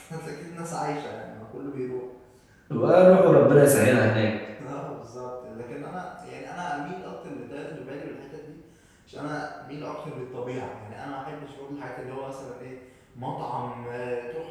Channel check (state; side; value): identical; both; correlation 1.00